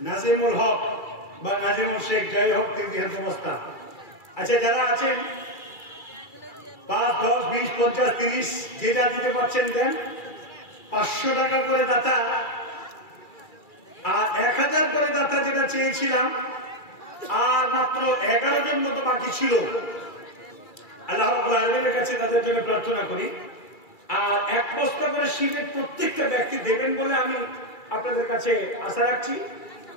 নাজিমুল হক বা নাজিমুল শেখ, যাই হোক 3 বস্তা। আচ্ছা যারা আছেন 5, 10, 20, 50, 30 যে যা দিতে পারছেন দেন। 500 টাকা করে দাতা আর 1000 করে দাতা যেটা চেয়েছিলাম, আর মাত্র 11 জন মতো বাকি ছিল। আল্লাহ রাব্বুল আলামিনের কাছে তাদের জন্য প্রার্থনা করি, আর 1 বস্তা করে সিমেন্ট প্রত্যেকটা ব্যক্তি দেবেন বলে আমি আপনাদের কাছে আশা রাখছি।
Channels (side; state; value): right; late; 2.3 ms